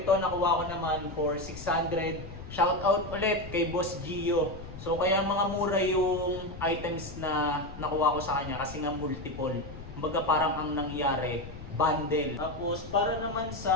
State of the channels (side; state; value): left; noise; rumble, 13 dB below the sound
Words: nakuha ko naman for 600. Shout out ulit kay Boss Gio. So kaya mga mura yung items na nakuha ko sa kanya kasi nga multiple. Kumbaga parang ang nangyari, bundle. Tapos para naman